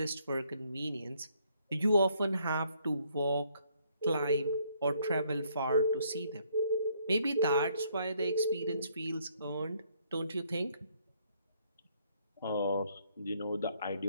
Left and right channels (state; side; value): inverted; both; correlation -0.68